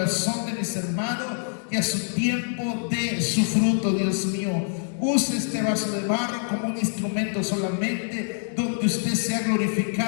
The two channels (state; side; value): silent; right; digital silence